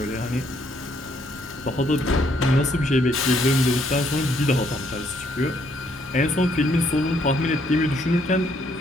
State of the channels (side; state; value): both; normal; correlation 0.70